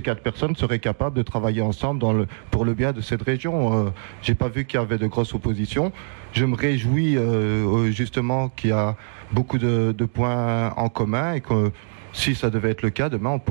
4 personnes seraient capables de travailler ensemble pour le bien de cette région. J'ai pas vu qu'il y avait de grosses oppositions. Je me réjouis justement qu'il y a beaucoup de points en commun, et que si ça devait être le cas, demain on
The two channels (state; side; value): silent; left; digital silence